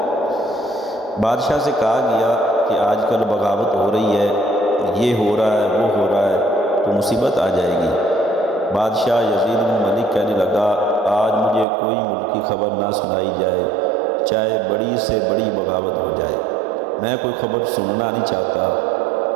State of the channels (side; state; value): left; drops out; at 11.7 s